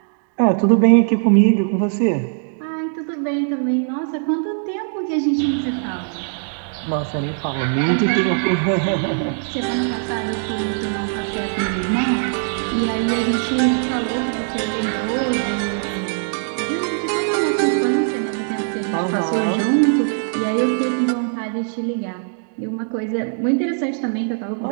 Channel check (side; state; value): left; silent; digital silence